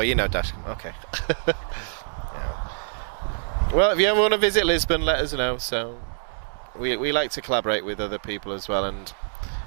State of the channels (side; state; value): left; silent; digital silence